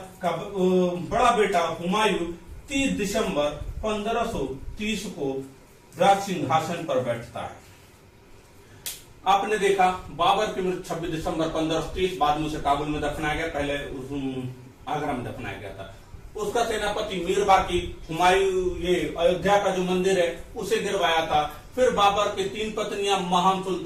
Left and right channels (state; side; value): identical; both; correlation 1.00